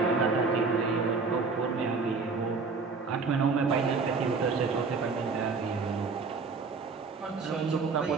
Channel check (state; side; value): quieter; left; 4.5 dB